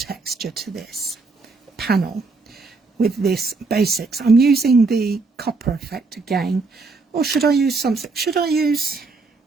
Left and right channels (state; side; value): quieter; left; 4.0 dB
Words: to this panel with this basics. I'm using the copper effect again, or should I use something? Should I use